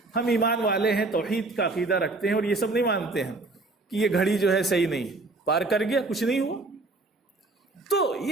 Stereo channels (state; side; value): quieter; left; 3.3 dB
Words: ہم ایمان والے ہیں، توحید کا عقیدہ رکھتے ہیں، اور یہ سب نہیں مانتے ہیں کہ یہ گھڑی جو ہے صحیح نہیں ہے۔ پار کر گیا، کچھ نہیں ہوا۔ تو